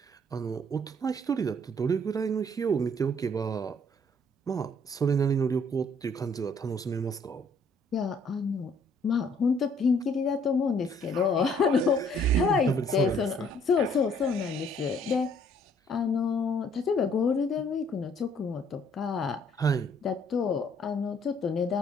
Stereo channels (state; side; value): normal; both; correlation 0.62